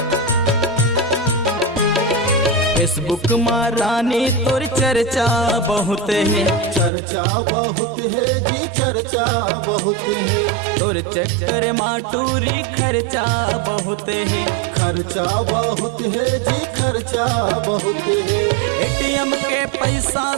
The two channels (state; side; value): drops out; left; at 6.9 s